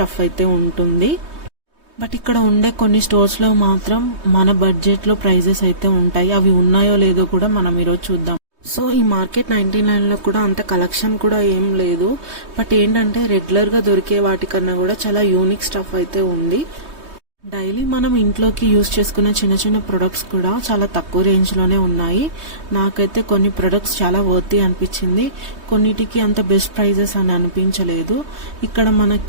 అయితే ఉంటుంది. బట్ ఇక్కడ ఉండే కొన్ని స్టోర్స్లో మాత్రం మన బడ్జెట్లో ప్రైజెస్ అయితే ఉంటాయి. అవి ఉన్నాయో లేదో కూడా మనం ఈరోజు చూద్దాం. సో ఈ మార్కెట్ 99లో కూడా అంత కలెక్షన్ కూడా ఏం లేదు. బట్ ఏంటంటే రెగ్యులర్గా దొరికే వాటికన్నా కూడా చాలా యూనిక్ స్టఫ్ అయితే ఉంది. డైలీ మనం ఇంట్లోకి యూజ్ చేసుకునే చిన్న చిన్న ప్రొడక్ట్స్ కూడా చాలా తక్కువ రేంజ్లోనే ఉన్నాయి. నాకైతే కొన్ని ప్రొడక్ట్స్ చాలా వర్తీ అనిపించింది, కొన్నిటికి అంత బెస్ట్ ప్రైజెస్ అని అనిపించలేదు. ఇక్కడ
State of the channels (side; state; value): left; late; 3.2 ms